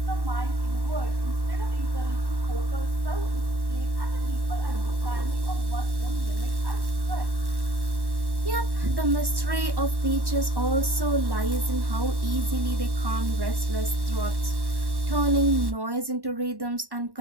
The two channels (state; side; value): late; left; 1.1 ms